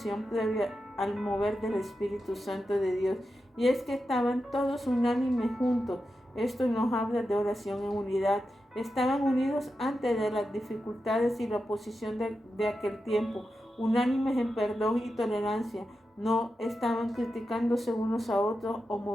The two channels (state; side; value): normal; both; correlation 0.89